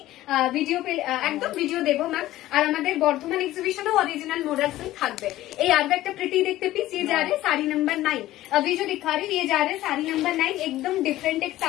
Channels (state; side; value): quieter; right; 15.3 dB